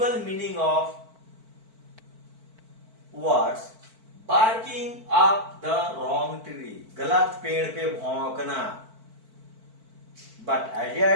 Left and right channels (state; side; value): late; left; 4.5 ms